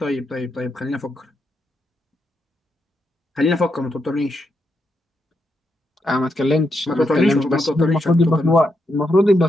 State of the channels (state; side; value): normal; both; correlation 0.82